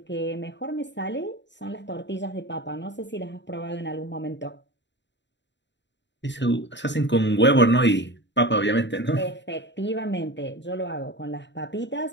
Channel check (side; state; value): right; late; 0.52 ms